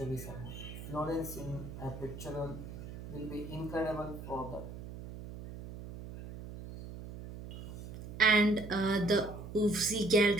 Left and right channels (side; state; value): right; noise; hum, 11 dB below the sound